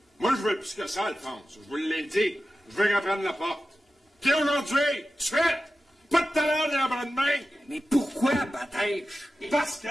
Moi, je veux plus que ça, Alphonse. Je vous l'ai dit. Je veux qu'elle prenne la porte. Puis aujourd'hui, tout de suite, pas de talent ni en bras de main. Mais pourquoi, Batèche? Parce que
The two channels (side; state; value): both; normal; correlation 0.93